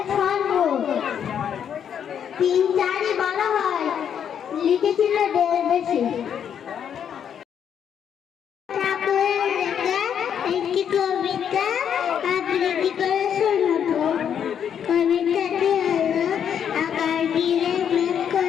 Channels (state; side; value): quieter; right; 8.5 dB